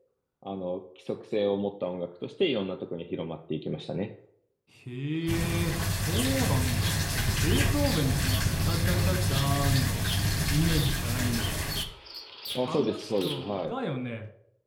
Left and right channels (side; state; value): both; identical; correlation 1.00